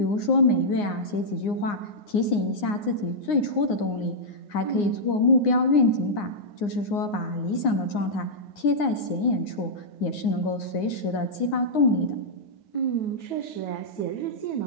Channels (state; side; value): late; right; 9.7 ms